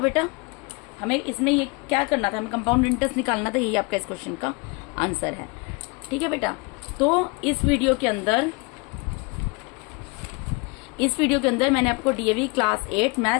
हमें इसमें ये क्या करना था, हमें कंपाउंड इंटरेस्ट निकालना था। यही आपका इस क्वेश्चन का आंसर है। ठीक है बेटा, तो इस वीडियो के अंदर मैंने आपको DAV class 8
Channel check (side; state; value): right; quieter; 29.0 dB